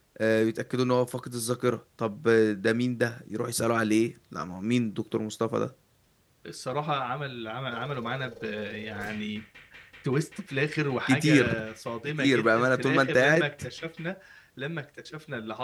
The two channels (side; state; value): both; identical; correlation 1.00